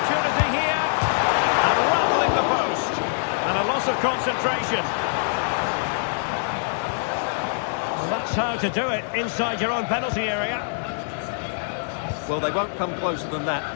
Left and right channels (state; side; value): silent; right; digital silence